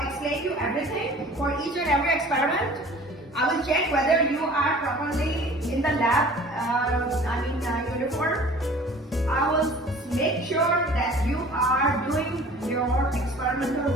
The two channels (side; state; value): both; normal; correlation 0.47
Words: explain you everything for each and every experiment. I will check whether you are properly in the lab, uniform. I will make sure that you are doing your experimental